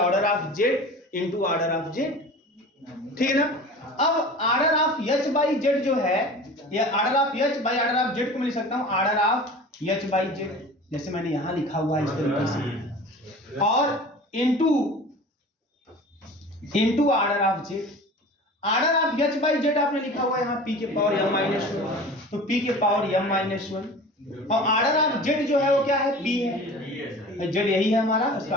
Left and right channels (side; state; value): both; normal; correlation 0.38